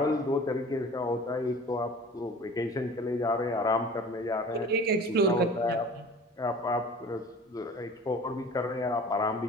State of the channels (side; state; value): both; normal; correlation 0.43